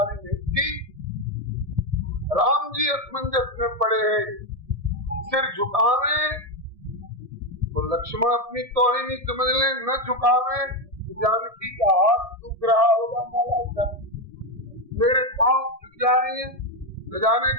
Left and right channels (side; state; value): left; late; 1.7 ms